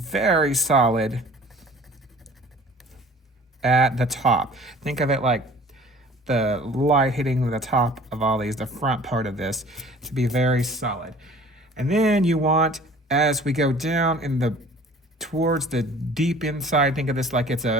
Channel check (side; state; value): both; normal; correlation 0.48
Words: solid at the top. Think of it like the light hitting the top of all these, the front part of this, to be very solid. And then you want, as we go down in the towards the deep inside, think of this like it's